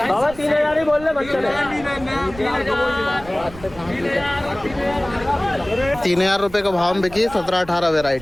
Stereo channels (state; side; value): noise; right; rumble, 17 dB below the sound